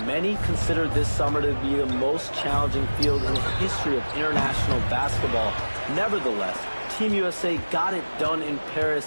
Many consider this summer to be the most challenging field in the history of international basketball. Nevertheless, Team USA got it done in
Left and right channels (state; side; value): inverted; both; correlation -1.00